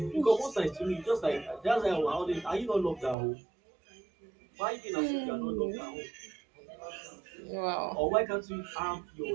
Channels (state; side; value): drops out; left; at 3.2 s